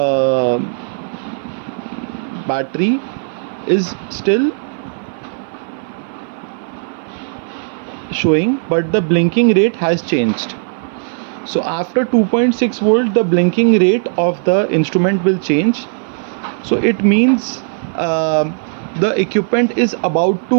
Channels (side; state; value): left; silent; 58 dB below the other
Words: battery is still showing, but the blinking rate has changed. So after 2.6 volt, the blinking rate of the instrument will change. So it means the equipment is about